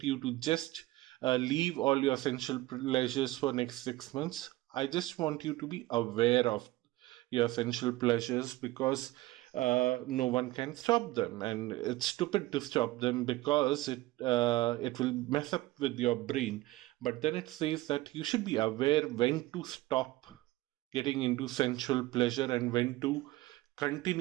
you to just leave all your sensual pleasures for next 6 months. I just want you to be aware of your sensual pleasures because no one can stop them, and it's stupid to stop them because it will mess up with your brain. But then it says that you should be aware when to stop getting into sensual pleasure and when to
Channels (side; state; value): left; quieter; 18.3 dB